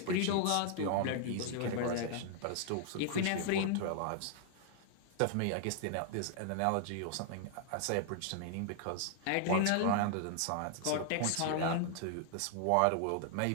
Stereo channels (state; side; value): different; both; correlation 0.00